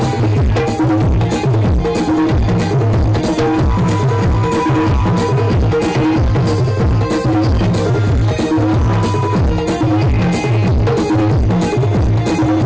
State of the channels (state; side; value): identical; both; correlation 1.00